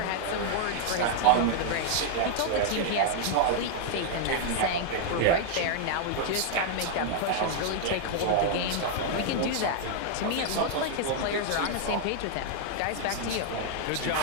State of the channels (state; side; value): different; both; correlation -0.01